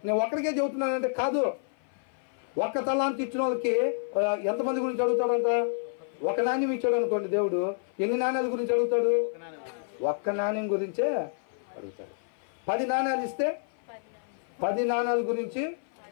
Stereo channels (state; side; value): silent; right; 55 dB below the other